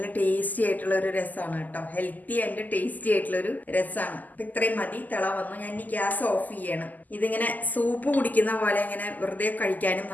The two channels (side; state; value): right; late; 0.082 ms